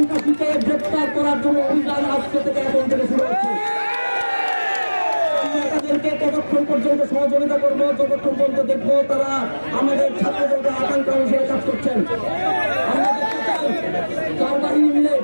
গ্রেপ্তার করার জন্য অভিযান আজকে থেকে এখন থেকে শুরু হচ্ছে। তাদেরকে ততক্ষণ পর্যন্ত সহযোগিতা করবো যতক্ষণ পর্যন্ত দেখবো তারা আমাদের ছাত্রদের আকাঙ্ক্ষা অনুসারে কাজ করছেন। আমরা দেখতে চাই চার বাহিনী মিলে,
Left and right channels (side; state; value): both; inverted; correlation -1.00